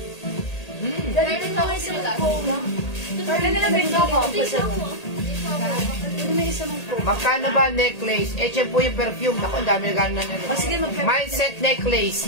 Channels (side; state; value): right; late; 1.8 ms